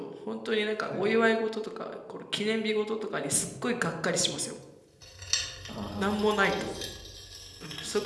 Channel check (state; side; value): identical; both; correlation 1.00